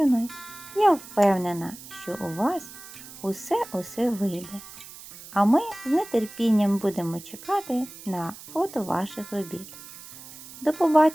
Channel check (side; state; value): right; noise; hiss, 16 dB below the sound